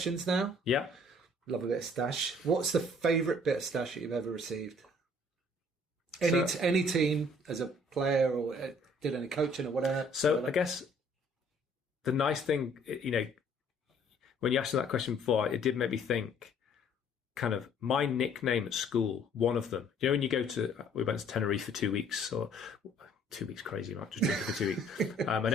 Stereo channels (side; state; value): both; normal; correlation 0.59